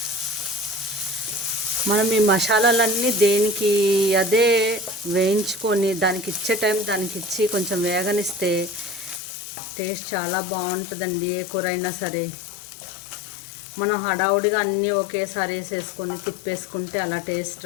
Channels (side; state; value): right; drops out; at 9.2 s